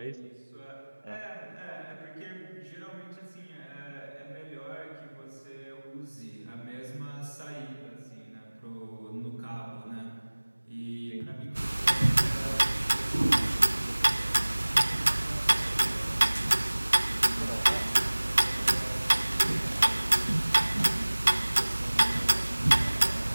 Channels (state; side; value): inverted; both; correlation -1.00